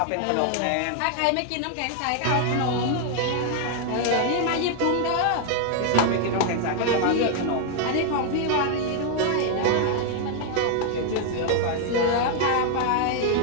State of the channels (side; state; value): both; different; correlation 0.00